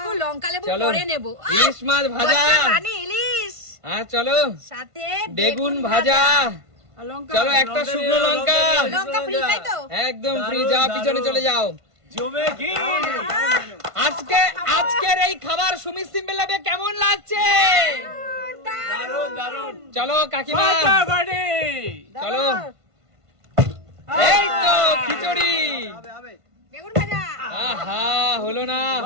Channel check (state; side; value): late; left; 1.5 ms